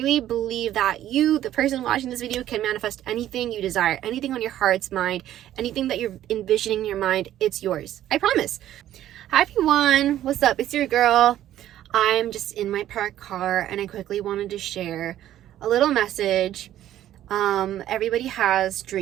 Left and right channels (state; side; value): quieter; left; 12.4 dB